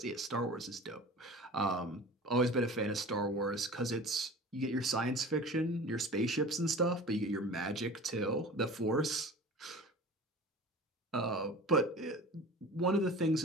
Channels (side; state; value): both; normal; correlation 0.38